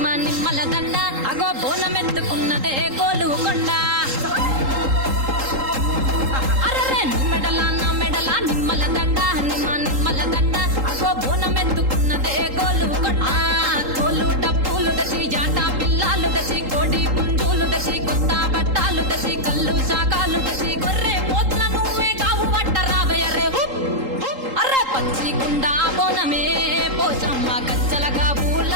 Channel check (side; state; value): left; late; 3.8 ms